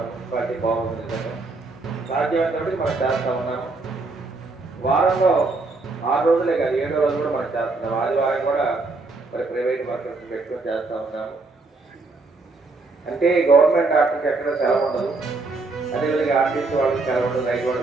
మున్సిపాలిటీ బాగుంది. సాధ్యమైనప్పటికీ మనం చేస్తూ ఉన్నాము. వారంలో 6 రోజులే కాదు, 7వ రోజు కూడా మనం చేస్తున్నాం. ఆదివారం కూడా మరి ప్రైవేట్ వర్కర్స్ పెట్టుకొని చేస్తూ ఉన్నాము. అంటే గవర్నమెంట్ డాక్టర్కి ఎక్కడ సెలవు ఉండదు, అదేవిధంగా ఆర్టీసీ వాళ్ళకి సెలవు ఉండదు, రైతు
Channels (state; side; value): quieter; left; 3.6 dB